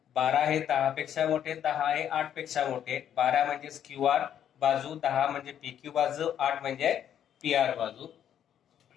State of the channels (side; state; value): right; quieter; 9.7 dB